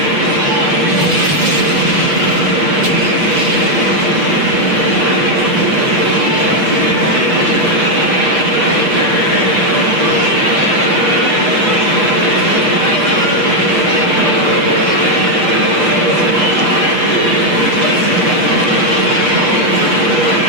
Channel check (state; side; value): late; left; 7.2 ms